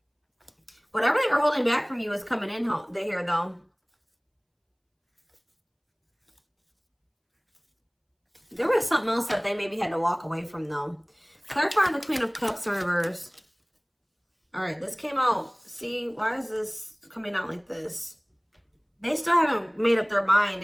Whatever they were holding back from you is coming in here though. There was something else that they maybe had to walk away from though. Clarifying the Queen of Cups in reverse. All right, this came out. See, why is this coming out like this? They still haven't made up their mind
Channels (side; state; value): both; identical; correlation 1.00